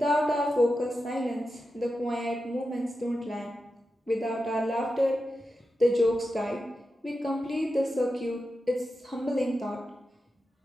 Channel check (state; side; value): normal; both; correlation 0.90